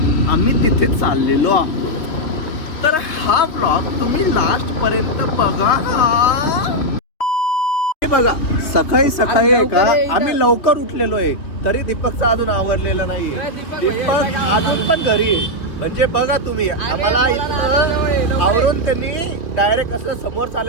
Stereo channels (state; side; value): late; right; 3.0 ms